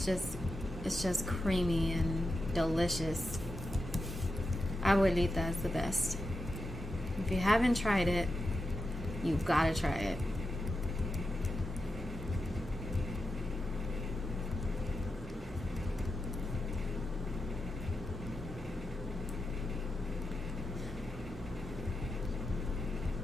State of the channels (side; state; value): both; normal; correlation 0.88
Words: just creamy and delicious. Abuelita is the best. If you haven't tried it, you've got to try it.